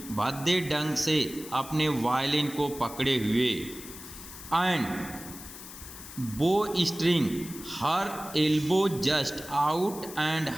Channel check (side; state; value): left; noise; hiss, 14 dB below the sound